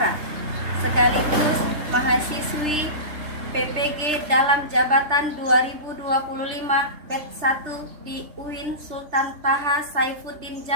sekaligus mahasiswi PPG dalam jabatan 2025 batch 1 di UIN Sultan Taha Saifuddin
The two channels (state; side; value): late; left; 3.3 ms